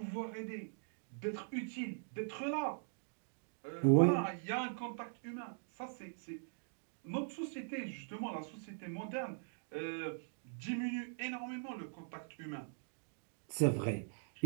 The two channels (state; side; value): silent; left; digital silence